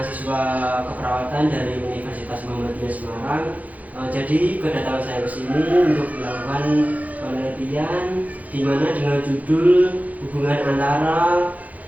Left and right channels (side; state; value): left; late; 0.076 ms